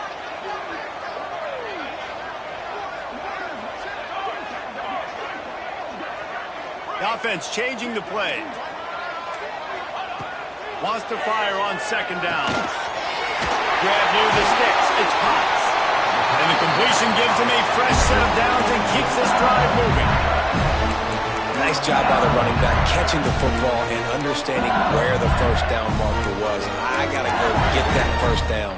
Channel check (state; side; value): identical; both; correlation 1.00